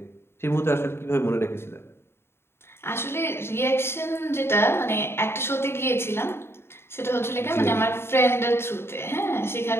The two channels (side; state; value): right; late; 0.12 ms